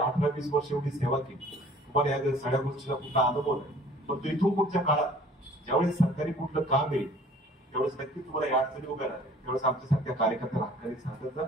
वर्ष एवढी सेवा केली, तुम्हाला या सगळ्या गोष्टीचा कुठला अनुभव नाही. पण इथून पुढच्या काळात ज्यावेळेस सरकारी कुठलं काम येईल त्यावेळेस नक्की तुम्हाला या अडचणी उभ्या राहतील. त्यावेळेस आमच्यासारख्या कार्यकर्त्याला हक्काने सांगायचं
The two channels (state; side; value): normal; both; correlation 0.51